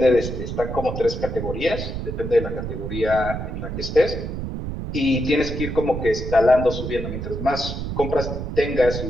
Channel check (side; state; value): right; noise; rumble, 5 dB below the sound